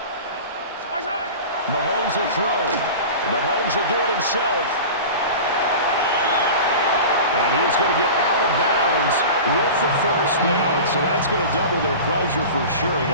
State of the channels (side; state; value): both; inverted; correlation -0.33